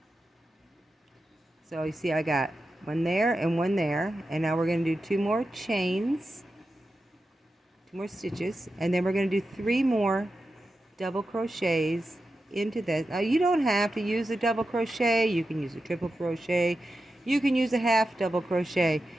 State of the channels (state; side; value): normal; both; correlation 0.91